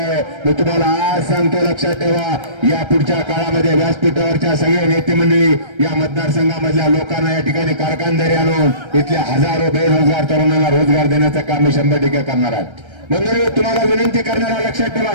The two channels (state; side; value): late; left; 1.3 ms